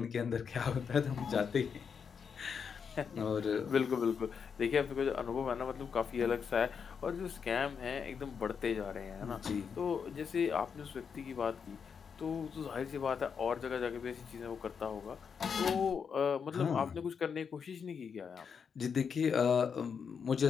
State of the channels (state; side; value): quieter; right; 6.5 dB